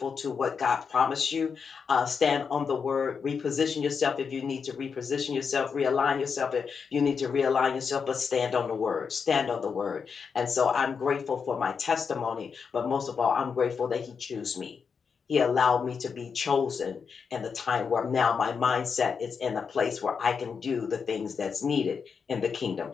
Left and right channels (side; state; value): right; quieter; 6.0 dB